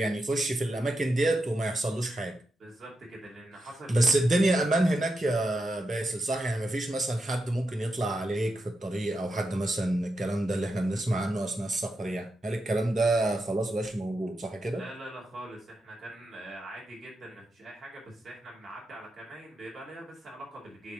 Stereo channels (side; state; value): both; normal; correlation 0.87